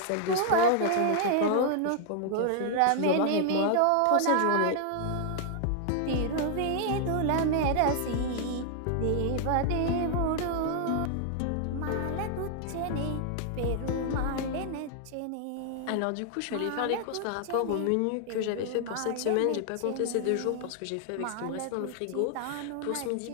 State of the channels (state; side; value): different; both; correlation 0.00